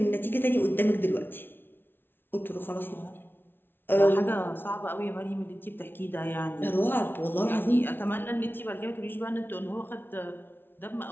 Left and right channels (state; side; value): late; right; 0.10 ms